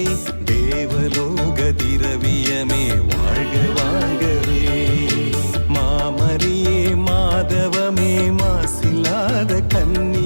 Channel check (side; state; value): both; inverted; correlation -1.00